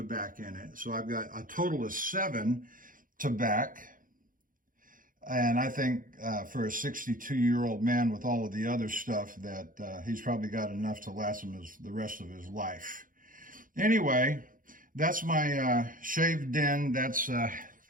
in it. So I've got a total of 7 tobacco. And I think for a 62-year-old man with all of the other stuff that he's probably got enough to last him the rest of his life. Anyway, that's my shaved den. That's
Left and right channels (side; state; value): left; late; 0.40 ms